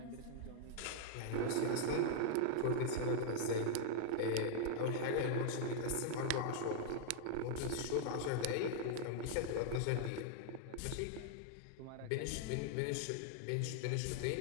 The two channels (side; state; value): both; different; correlation -0.01